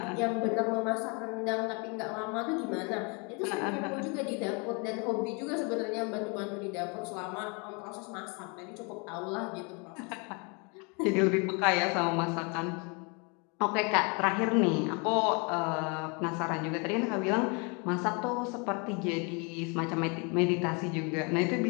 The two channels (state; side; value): quieter; right; 32.6 dB